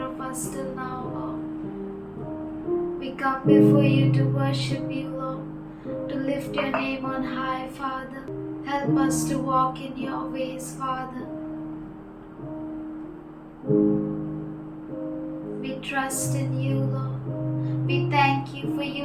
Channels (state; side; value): identical; both; correlation 1.00